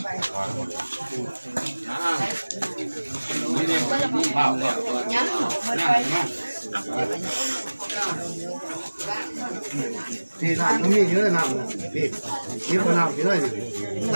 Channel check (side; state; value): both; inverted; correlation -1.00